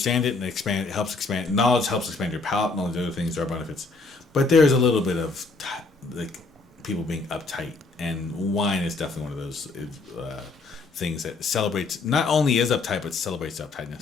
it and expand. It helps expand knowledge. Helps expand your palate and all the other things. There are benefits, but there's a little bit of like people being uptight, and wine is definitely one of those things that celebrates. Not only is uptight, but celebrates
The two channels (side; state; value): right; quieter; 3.7 dB